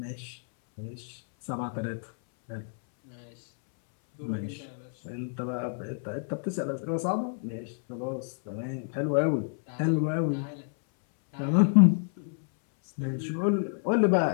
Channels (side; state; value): right; silent; 59 dB below the other